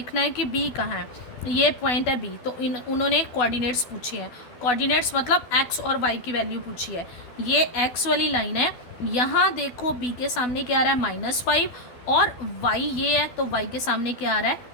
है कि बी कहाँ है, ये पॉइंट है बी, तो उन्होंने कोऑर्डिनेट्स पूछे हैं। कोऑर्डिनेट्स मतलब एक्स और वाई की वैल्यू पूछी है। ये एक्स वाली लाइन है, यहाँ देखो बी के सामने क्या आ रहा है -5, और वाई ये है तो वाई के सामने क्या आ रहा है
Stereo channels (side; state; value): right; late; 12 ms